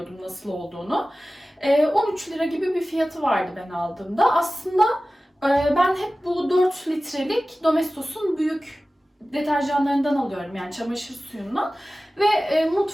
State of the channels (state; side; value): normal; both; correlation 0.96